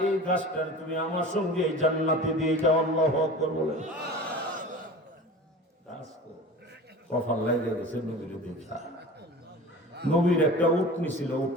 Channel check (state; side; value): normal; both; correlation 0.36